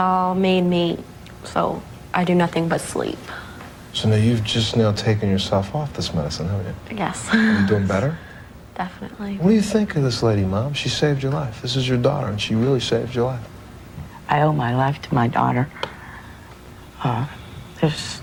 made me so I do nothing but sleep. So now you've just now taken yourself off this medicine, haven't you? Yes. Are you doing better? Definitely. What do you think of this lady, Mom? She saved your life. This is your daughter, and she really saved your life. I owe my life to my daughter. There's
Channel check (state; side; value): identical; both; correlation 1.00